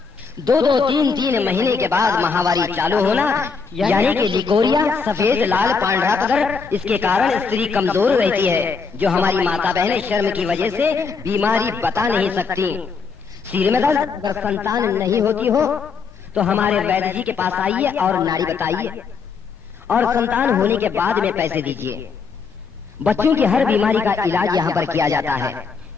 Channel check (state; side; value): quieter; right; 5.3 dB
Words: 2-2, 3-3 महीने के बाद महावारी चालू होना, यानी कि लिकोरिया, सफेद लाल पांडा पदर, इसके कारण स्त्री कमजोर रहती है, जो हमारी माता बहनें शर्म की वजह से बीमारी बता नहीं सकती। सिर में दर्द, अगर संतान नहीं होती हो तो हमारे वैद्य जी के पास आइए और नाड़ी बताइए और संतान होने के बाद में पैसे दीजिए। बच्चों की हर बीमारी का इलाज यहाँ पर किया जाता है।